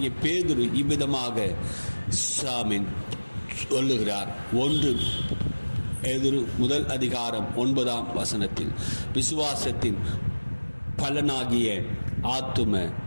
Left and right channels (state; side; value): inverted; both; correlation -1.00